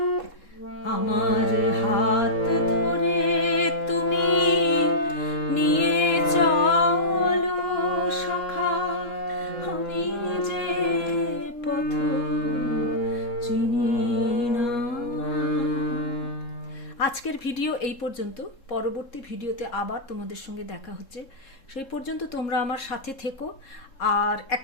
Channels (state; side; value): late; right; 3.7 ms